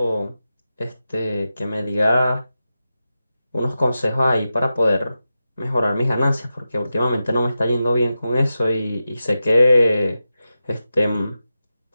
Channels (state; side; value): inverted; both; correlation -0.91